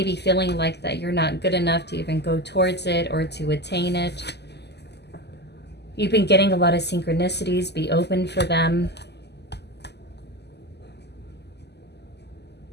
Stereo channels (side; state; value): right; late; 0.49 ms